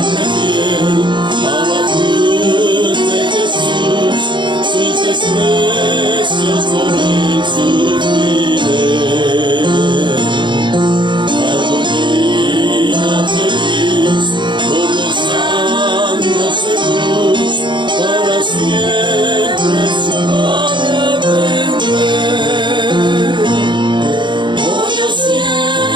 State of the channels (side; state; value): left; late; 0.23 ms